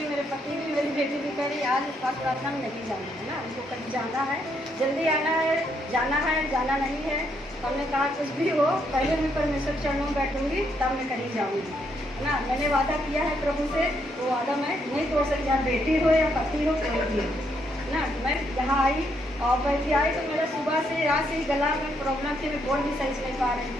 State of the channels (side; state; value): both; normal; correlation 0.75